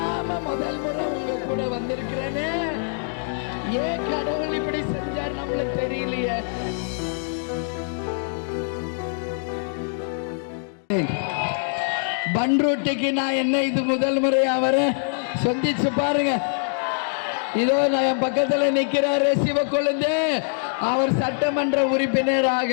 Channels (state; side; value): silent; right; digital silence